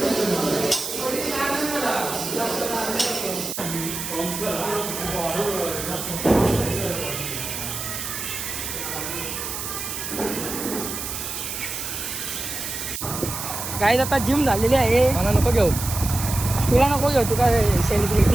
काय आता जिम झालेली आहे. मला नको घेऊ. तुला नको घेऊ तुका सेलिब्रेट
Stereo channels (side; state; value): right; noise; hiss, 5 dB below the sound